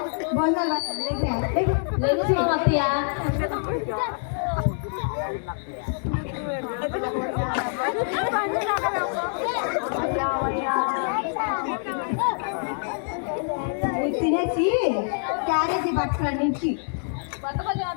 భోజనాలు లెగుస్తాం అత్తయ్య. తినేసి క్యారేజీ పట్టుకురండి ఇంటికి. పట్టుకొని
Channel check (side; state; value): right; silent; digital silence